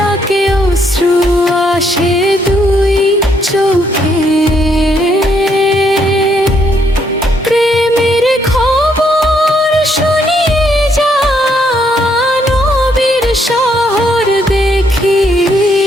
অশ্রু আসে দুই চোখে। প্রেমের খবর শুনিয়ে যা নবীর শহর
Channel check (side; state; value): both; normal; correlation 0.72